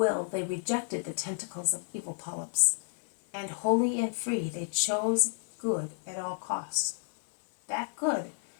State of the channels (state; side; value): silent; right; 57 dB below the other